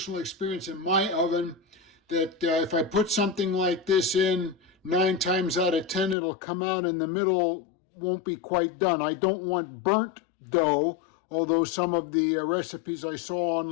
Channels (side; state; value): right; drops out; at 6.2 s